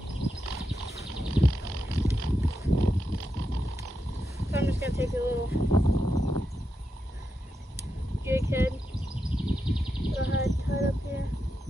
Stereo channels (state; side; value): normal; both; correlation 0.86